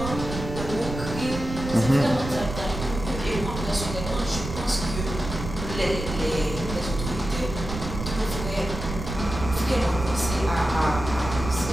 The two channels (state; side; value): noise; right; rumble, 7 dB below the sound